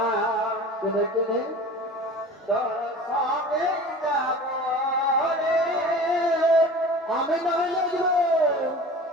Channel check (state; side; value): normal; both; correlation 0.39